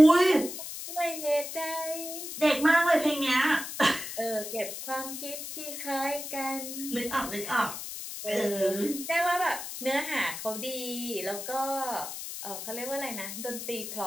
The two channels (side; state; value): left; noise; hiss, 8 dB below the sound